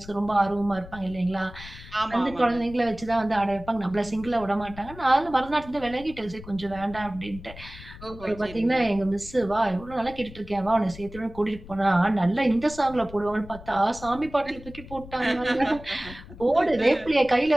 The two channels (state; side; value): noise; left; rumble, 16 dB below the sound